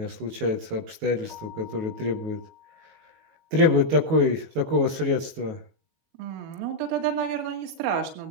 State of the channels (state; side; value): late; left; 19 ms